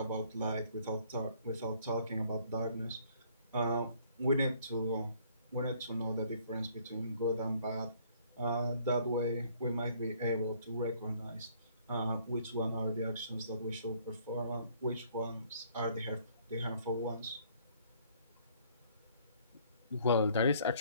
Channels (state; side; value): inverted; both; correlation -0.61